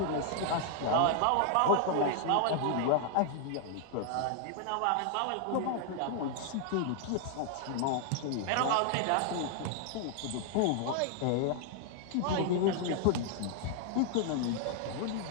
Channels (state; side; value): different; both; correlation 0.00